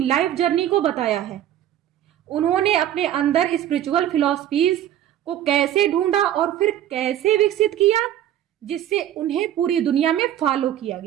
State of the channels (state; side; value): quieter; left; 11.7 dB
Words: जर्नी को बताया है। उन्होंने अपने अंदर स्पिरिचुअल फिलॉसफीज को कैसे ढूंढा और फिर कैसे विकसित किया, जिससे उन्हें पूरी दुनिया में फॉलो किया